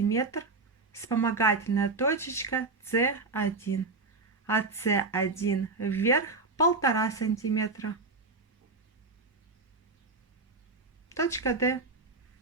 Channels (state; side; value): quieter; left; 3.8 dB